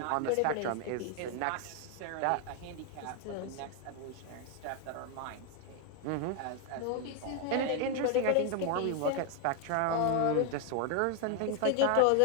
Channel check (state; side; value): different; both; correlation 0.01